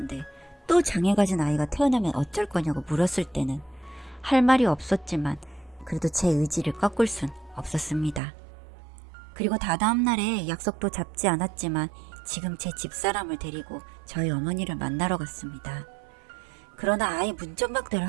또 장애 가진 아이가 태어나면 어쩔 거냐고 물었을 때는 할 말이 없었지만 그래도 제 의지를 꺾을 순 없었습니다. 그리고 다다음 날에 약속도 잡지 않았지만 지금 제 집사람을 데리고 저희 어머니를 만나러 갔습니다. 그러나 아예 문전박대를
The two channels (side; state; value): left; drops out; at 8.2 s